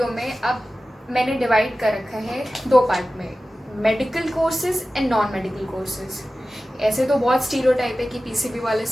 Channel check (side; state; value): both; normal; correlation 0.95